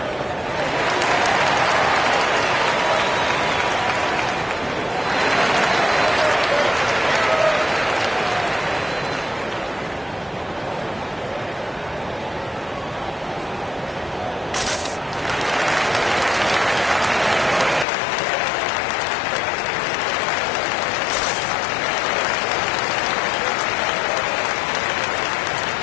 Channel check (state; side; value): drops out; right; at 17.9 s